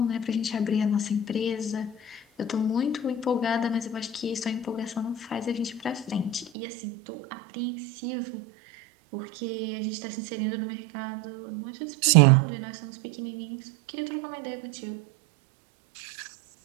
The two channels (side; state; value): left; drops out; at 6.5 s